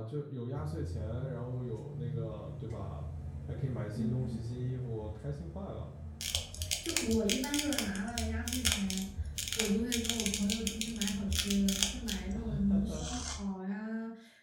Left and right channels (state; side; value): identical; both; correlation 1.00